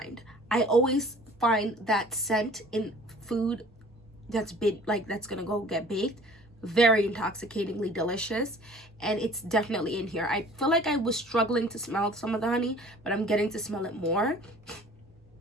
I always find that scent in food that's been like, that's gonna go get baked, very intoxicatingly delicious, and it's definitely in here. I feel like I was struggling to smell some of the honey, but I'm getting to smell it more.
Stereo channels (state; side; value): normal; both; correlation 0.49